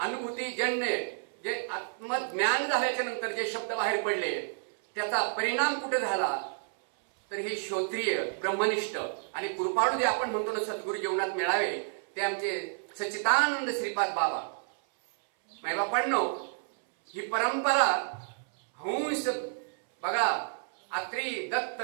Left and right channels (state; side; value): silent; left; 58 dB below the other